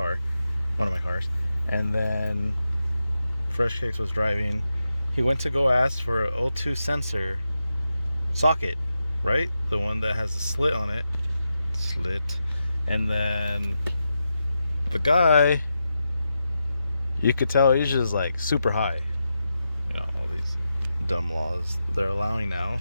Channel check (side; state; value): both; inverted; correlation -0.88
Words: one of my cars, and then Freshhkiicks was driving. He went to go ask for an O2 sensor socket, right? The one that has a slit on it. And then the guy, you could tell he's just like super high. You know, all these dumb laws they're allowing